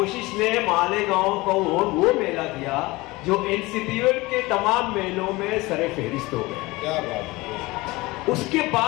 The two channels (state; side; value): quieter; right; 21.6 dB